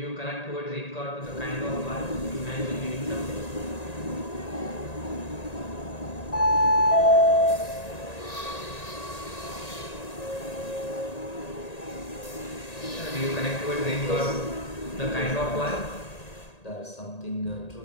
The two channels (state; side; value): late; right; 1.8 ms